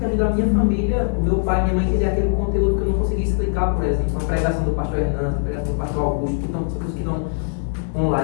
ajuda a minha família, o meu pai e minha mãe a entender aquele conteúdo que eu não consegui explicar, por exemplo, uma pregação do pastor Hernandes, uma pregação do pastor Augusto, que estão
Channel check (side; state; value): right; silent; 65 dB below the other